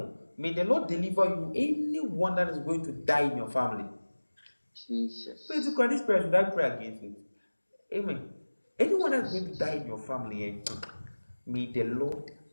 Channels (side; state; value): both; inverted; correlation -1.00